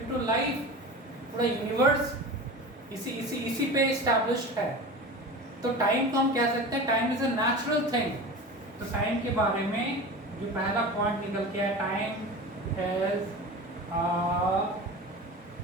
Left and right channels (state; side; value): normal; both; correlation 0.32